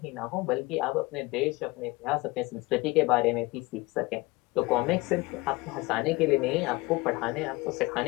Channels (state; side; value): quieter; right; 22.7 dB